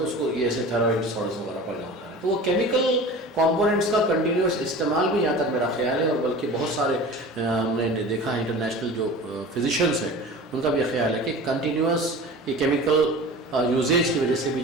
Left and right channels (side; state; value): both; normal; correlation 0.37